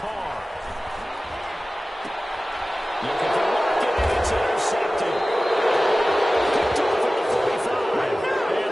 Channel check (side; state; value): both; normal; correlation 0.96